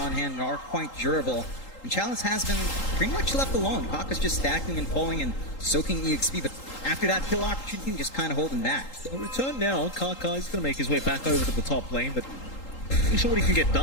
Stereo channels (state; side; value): late; right; 3.8 ms